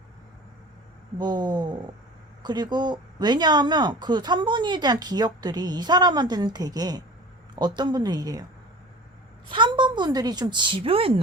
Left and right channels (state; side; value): normal; both; correlation 0.39